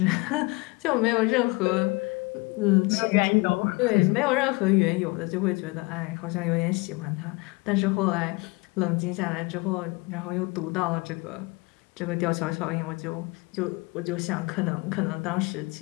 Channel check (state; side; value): quieter; right; 26.2 dB